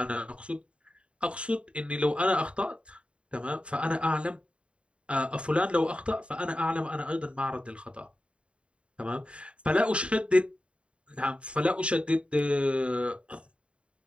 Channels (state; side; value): late; left; 0.058 ms